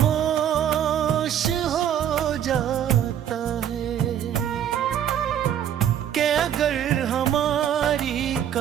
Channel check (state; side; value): quieter; left; 9.8 dB